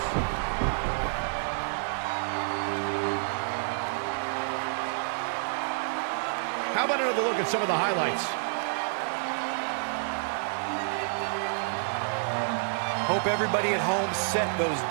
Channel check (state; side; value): silent; left; 59 dB below the other